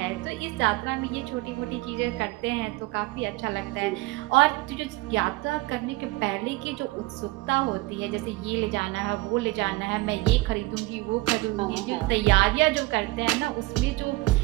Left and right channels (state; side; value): quieter; left; 20.7 dB